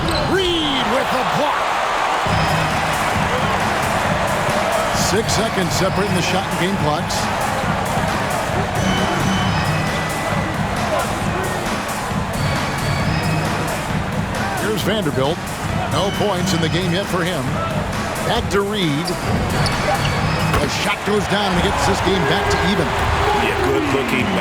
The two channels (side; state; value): both; identical; correlation 1.00